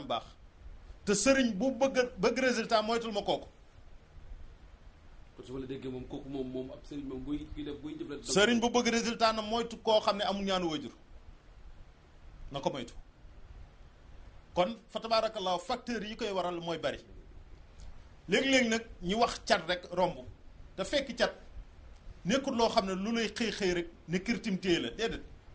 baax te sëriñ bu bëgg résultat moytul ma kooku. kon su ma la déggee moom kooku moom ab sëriñ moom buy jëflante. sëriñ bu bëgg résultat na moytu koo xam ne amul ñaanu waajur na ko moytu kon fa tabaarakallaahu facteurs yi koy waral mooy bari léegi-léegi nag ñu wax cat rek romb te fekk cat nekkul loo xam ne lu lay xëy rek ne kirtim téye la déedéet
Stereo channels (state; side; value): identical; both; correlation 1.00